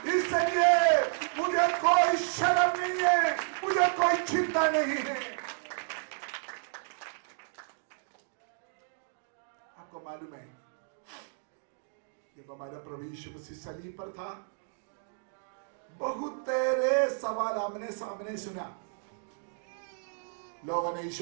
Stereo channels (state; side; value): silent; left; digital silence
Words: इसलिए मुझे कोई शर्म नहीं है, मुझे कोई चिंता नहीं है। आपको मालूम है जब हमारा प्रभु यीशु मसीह सलीब पर था, बहुत तेरे सवाल आमने सामने सुना, लोगों ने